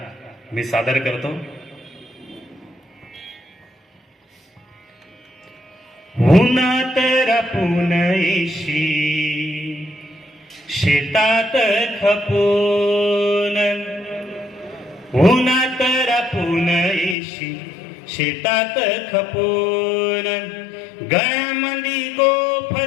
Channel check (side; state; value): right; drops out; at 17.2 s